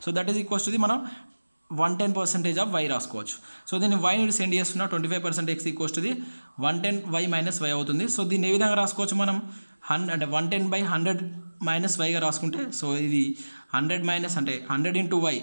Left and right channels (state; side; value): inverted; both; correlation -1.00